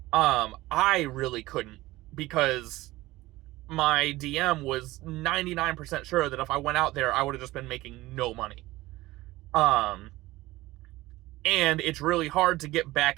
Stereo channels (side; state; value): left; quieter; 18.3 dB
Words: I really couldn't, because my DM was 99% sure that if I went out there, I would have just been making no money. And it's really hard to get back